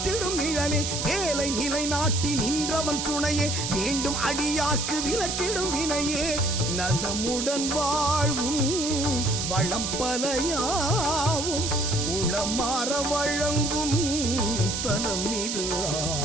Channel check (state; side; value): noise; right; hiss, 2 dB below the sound